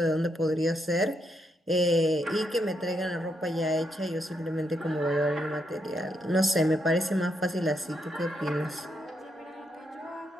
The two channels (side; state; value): both; normal; correlation 0.79